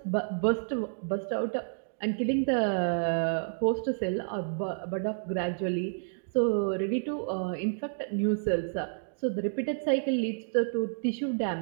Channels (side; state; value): left; silent; digital silence